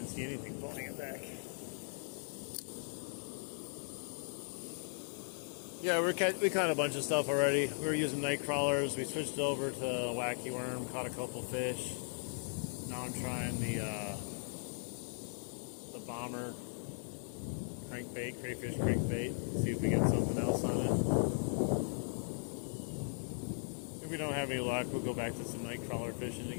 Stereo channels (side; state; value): right; silent; digital silence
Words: see anything pulling it back. Yeah, we caught a bunch of stuff already. We were using night crawlers. We switched over to wacky worm, caught a couple fish. Now I'm trying the bomber crankbait, crayfish crankbait. See if we get something else on it. If we don't have any luck, we'll go back to some night crawler fishing